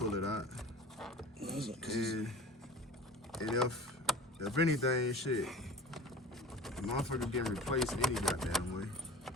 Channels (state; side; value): normal; both; correlation 0.37